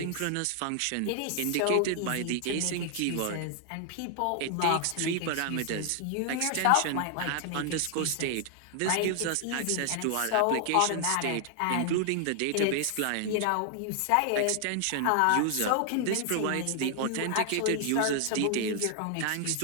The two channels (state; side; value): different; both; correlation 0.00